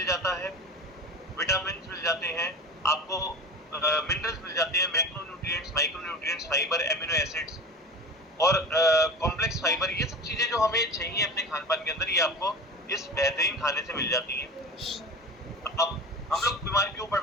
जाता है, विटामिन मिल जाते हैं, आपको मिनरल्स मिल जाते हैं, macronutrients nutrients, micro nutrients, fibre, amino acids और कॉम्प्लेक्स फाइबर, ये सब चीजें जो हमें चाहिए अपने खान पान के अंदर, ये आपको इस बेहतरीन खाने से मिल जाती है। अब हम लोग बीमार क्यों पड़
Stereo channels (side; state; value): both; normal; correlation 0.31